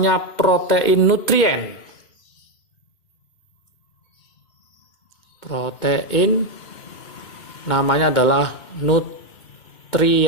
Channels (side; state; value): right; late; 2.1 ms